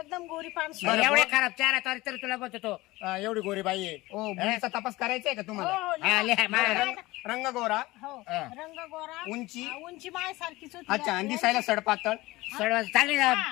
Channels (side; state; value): right; quieter; 19.8 dB